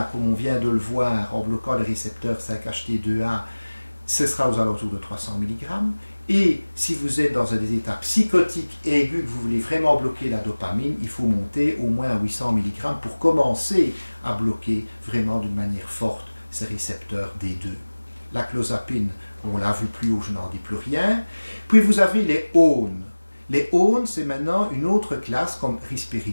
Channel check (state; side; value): inverted; both; correlation -1.00